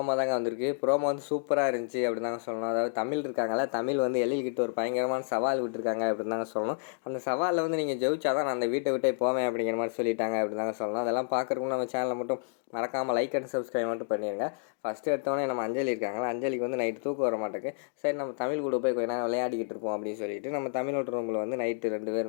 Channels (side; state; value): right; silent; digital silence